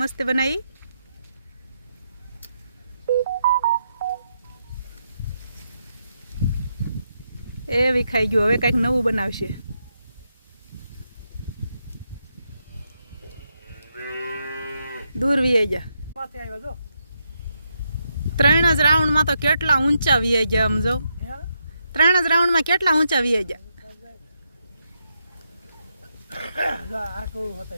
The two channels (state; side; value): inverted; both; correlation -0.81